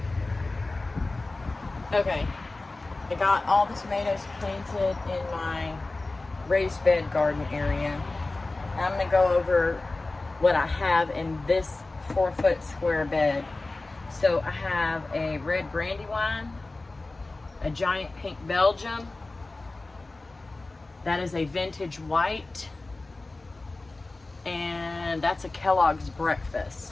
Okay, I got all the tomatoes planted in my raised bed garden area. I'm gonna go over what I have in this 4-foot square bed. So I have a red brandywine, a giant pink Belgium, that is a vintage white, and that's a Kellogg's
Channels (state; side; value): quieter; right; 3.2 dB